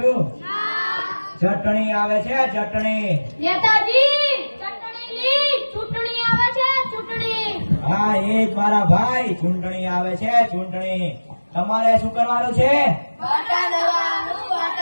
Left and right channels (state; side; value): inverted; both; correlation -1.00